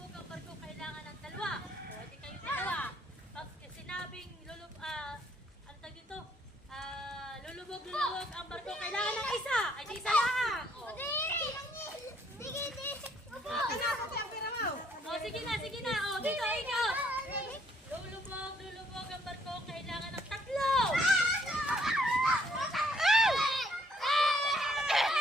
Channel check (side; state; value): both; normal; correlation 0.67